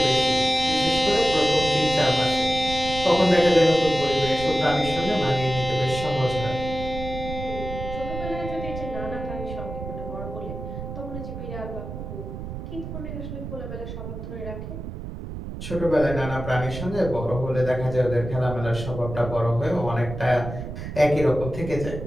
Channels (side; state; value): right; noise; rumble, 8 dB below the sound